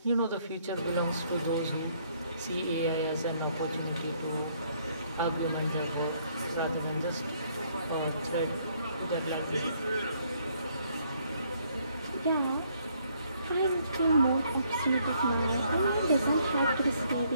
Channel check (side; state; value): both; inverted; correlation -0.68